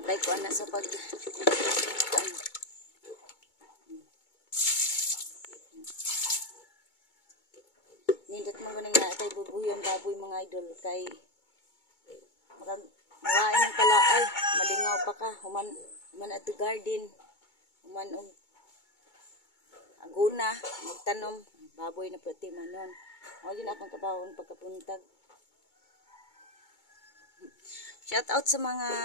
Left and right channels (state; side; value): late; right; 2.2 ms